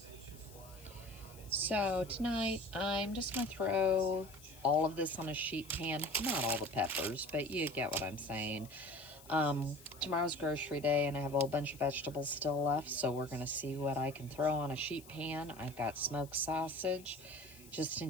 So tonight, I'm just gonna throw all of this on a sheet pan. Not all the peppers, but you get what I'm saying. Tomorrow's grocery day, and I have a whole bunch of vegetables still left, so we're gonna see what I can throw on a sheet pan. I've got smoked sausage. Just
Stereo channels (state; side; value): noise; left; hiss, 21 dB below the sound